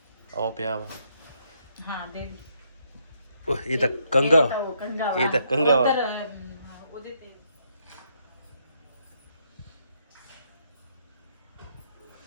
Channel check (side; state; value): both; inverted; correlation -0.73